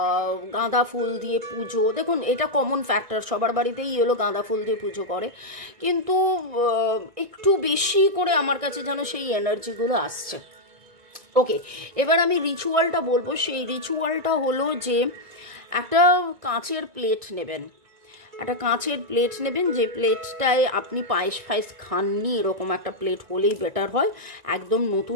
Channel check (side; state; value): left; late; 1.9 ms